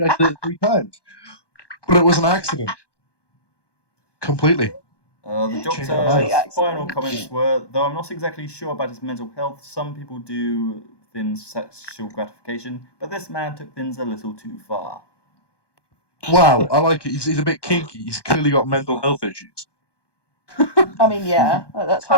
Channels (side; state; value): right; late; 1.2 ms